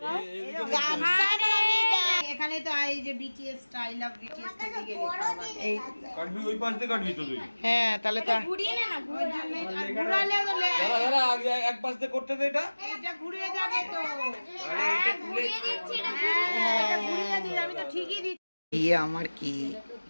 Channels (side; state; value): both; inverted; correlation -1.00